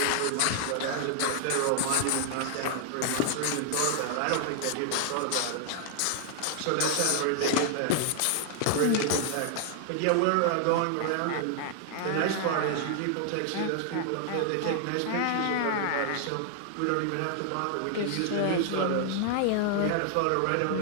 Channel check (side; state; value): both; different; correlation 0.00